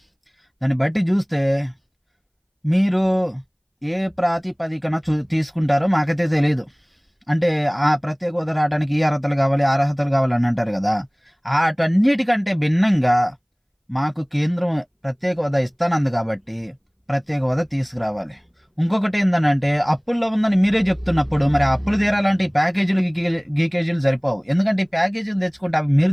దాన్ని బట్టి చూస్తే మీరు ఏ ప్రాతిపదికన తీసుకుంటారో మాకైతే తెలియదు. అంటే ఆ ప్రత్యేక హోదా రావడానికి ఈ అర్హతలు కావాలి, ఆ అర్హతలు కావాలని అంటారు కదా. వాటన్నిటికంటే భిన్నంగా మాకు కేంద్రం ప్రత్యేక హోదా ఇస్తానంది కాబట్టి ప్రత్యేక హోదా తీసుకురావాలి. ఇంకొకటి ఏంటంటే అప్పుల్లో ఉందని మీరే చెప్తున్నప్పుడు మరి అప్పులు తీరాలంటే ఈ ప్యాకేజీలు గీకేజీలు సరిపోవు. ఎందుకంటే ఈ ప్యాకేజీలు తెచ్చుకుంటే అవి మీరు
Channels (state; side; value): identical; both; correlation 1.00